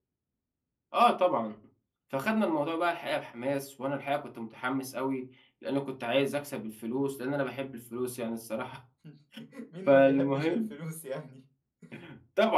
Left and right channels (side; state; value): both; identical; correlation 1.00